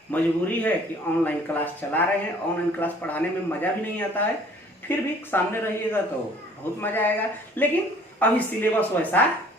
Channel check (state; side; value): normal; both; correlation 0.54